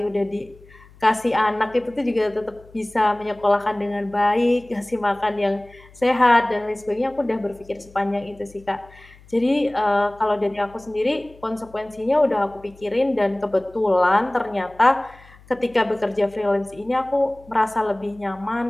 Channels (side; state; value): left; noise; hum, 25 dB below the sound